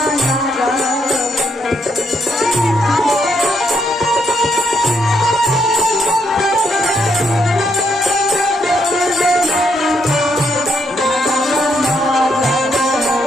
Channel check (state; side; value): normal; both; correlation 0.75